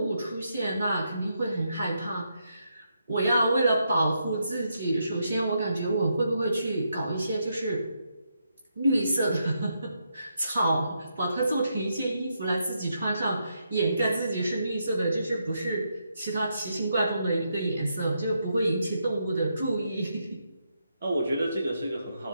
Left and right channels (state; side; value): inverted; both; correlation -0.80